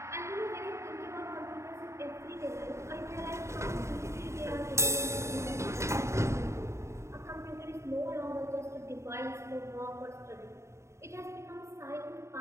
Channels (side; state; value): left; late; 0.14 ms